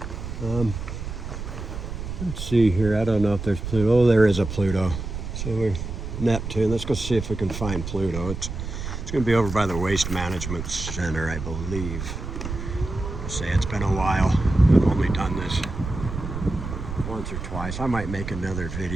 Let's see here. I don't know if there's Pluto. Oh, there is a Pluto. So we're Neptune. Let's go see if we can find Pluto. It's going to be over by the Waste Management Center, I believe. I'll say it's been a while. I've only done this once or twice. I might make another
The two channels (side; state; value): right; noise; rumble, 7 dB below the sound